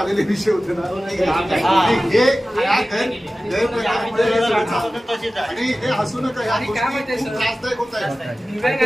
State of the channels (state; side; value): normal; both; correlation 0.96